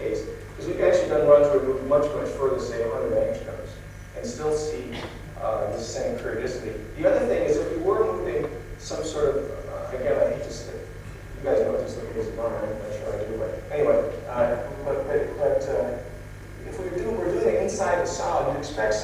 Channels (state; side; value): identical; both; correlation 1.00